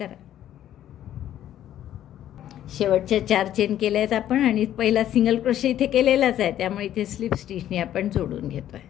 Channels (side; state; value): right; quieter; 11.7 dB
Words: शेवटच्या 4 चेन केल्या आहेत आपण आणि पहिला सिंगल क्रोशे इथे केलेलाच आहे, त्यामुळे इथे स्लिप स्टिचनी आपण जोडून घेतो आहे.